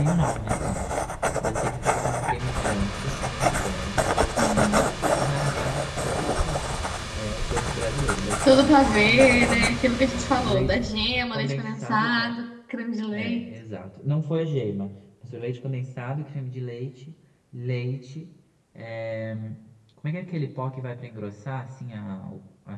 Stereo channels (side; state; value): both; identical; correlation 1.00